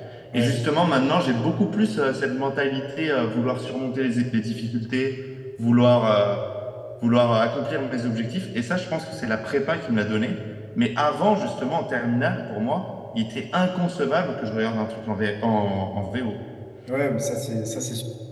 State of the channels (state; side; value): identical; both; correlation 1.00